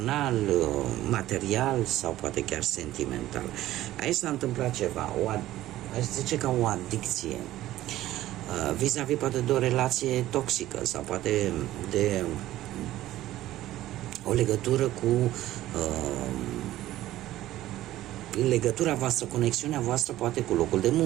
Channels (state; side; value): quieter; left; 14.7 dB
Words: material sau poate chiar sentimental. Aici s-a întâmplat ceva, aș zice ca o adicție, vis-a-vis poate de o relație toxică sau poate de o legătură cu legătura voastră, conexiunea voastră poate cu locul de